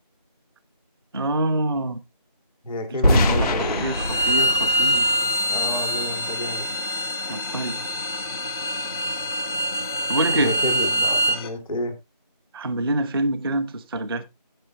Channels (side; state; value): both; inverted; correlation -0.65